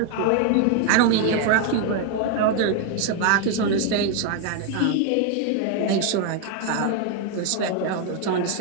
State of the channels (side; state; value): both; different; correlation 0.01